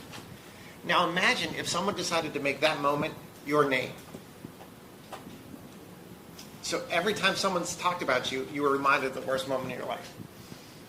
Now imagine if someone decided to make that moment your name. So every time someone's talked about you, you were reminded of the worst moment of your life.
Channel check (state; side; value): identical; both; correlation 1.00